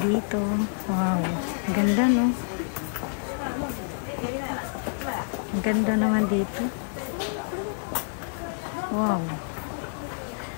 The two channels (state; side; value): silent; right; digital silence